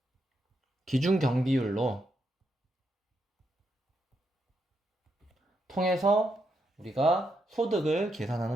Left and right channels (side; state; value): both; normal; correlation 0.81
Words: 기준 경비율로 통해서 우리가 소득을